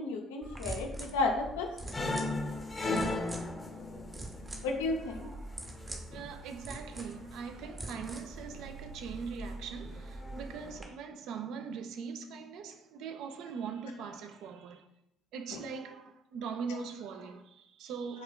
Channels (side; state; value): both; normal; correlation 0.58